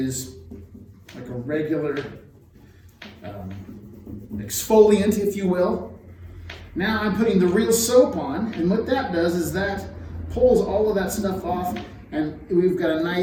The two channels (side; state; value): both; identical; correlation 1.00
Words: like a regular exfoliant, if you will. Now I'm putting the real soap on, and what that does is that pulls all of that stuff off, and we've got a